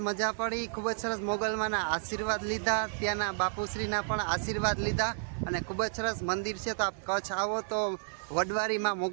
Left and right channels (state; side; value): silent; left; digital silence